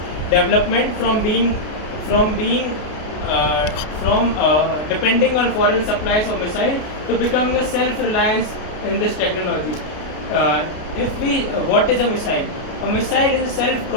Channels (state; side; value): late; right; 33 ms